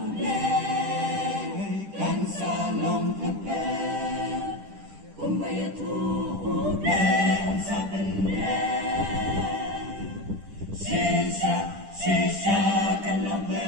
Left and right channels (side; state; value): left; late; 10 ms